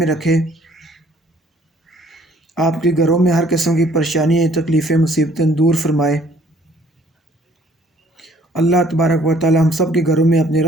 رکھے، آپ کے گھروں میں ہر قسم کی پریشانیاں، تکلیفیں، مصیبتیں دور فرمائے۔ اللہ تبارک و تعالی ہم سب کے گھروں میں اپنی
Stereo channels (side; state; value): both; normal; correlation 0.59